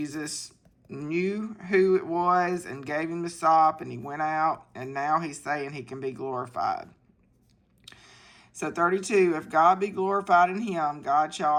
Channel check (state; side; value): identical; both; correlation 1.00